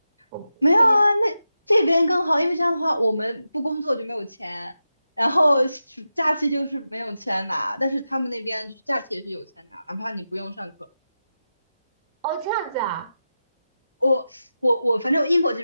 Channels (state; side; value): inverted; both; correlation -0.91